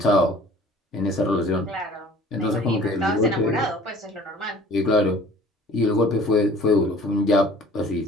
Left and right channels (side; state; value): both; normal; correlation 0.49